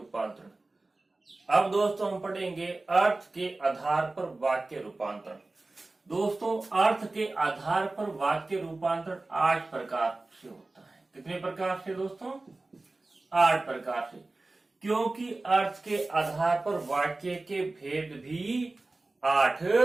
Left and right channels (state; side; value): quieter; left; 3.1 dB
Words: अब दोस्तों हम पढ़ेंगे अर्थ के आधार पर वाक्य रूपांतरण। दोस्तों, अर्थ के आधार पर वाक्य रूपांतरण 8 प्रकार से होता है। कितने प्रकार से दोस्तों? 8 प्रकार से, क्योंकि अर्थ के आधार पर वाक्य के भेद भी 8